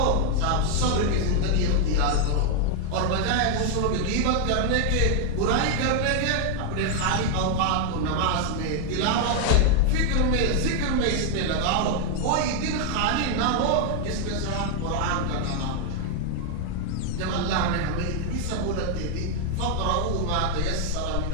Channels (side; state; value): both; different; correlation 0.00